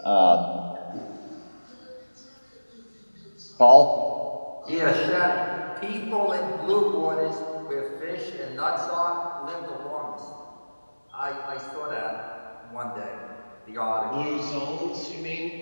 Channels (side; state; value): both; inverted; correlation -1.00